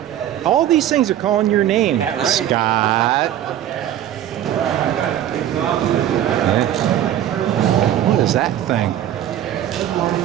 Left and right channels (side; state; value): left; quieter; 11.4 dB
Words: All these things are calling your name. Yeah, right. Scott. What is that thing?